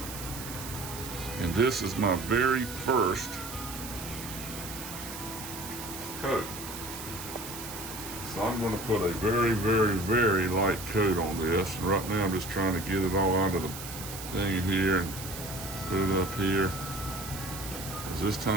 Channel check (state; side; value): noise; right; hiss, 10 dB below the sound